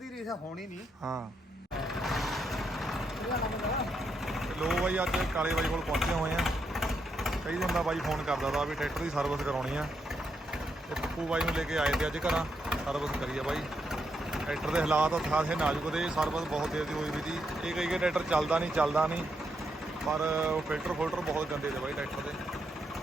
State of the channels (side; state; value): both; normal; correlation 0.80